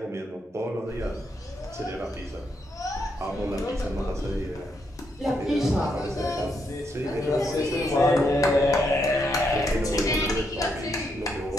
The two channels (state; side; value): normal; both; correlation 0.78